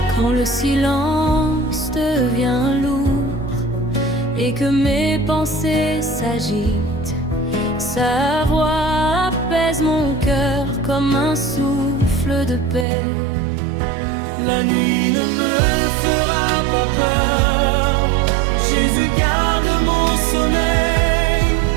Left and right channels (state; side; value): drops out; left; at 12.9 s